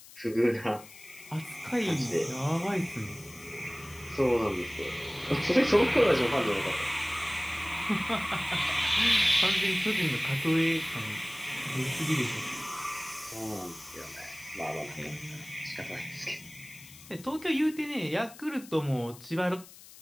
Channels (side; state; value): left; noise; hiss, 19 dB below the sound